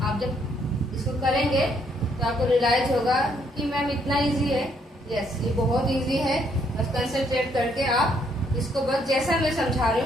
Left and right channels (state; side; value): normal; both; correlation 0.70